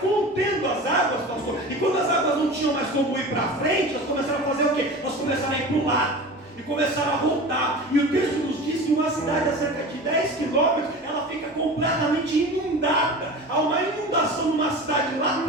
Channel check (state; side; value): normal; both; correlation 0.33